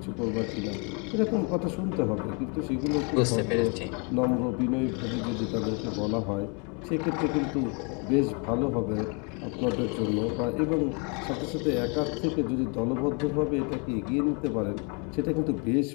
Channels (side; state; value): right; quieter; 33.9 dB